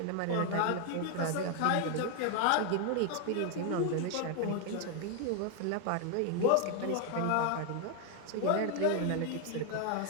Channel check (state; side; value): different; both; correlation 0.00